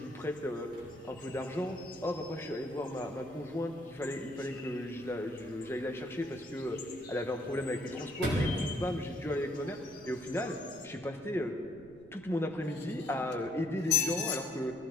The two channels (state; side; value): noise; right; rumble, 22 dB below the sound